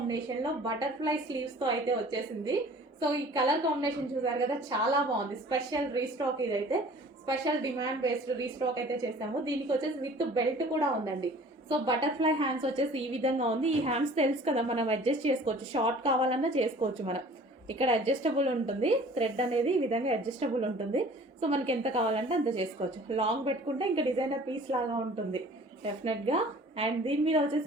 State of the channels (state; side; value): normal; both; correlation 0.48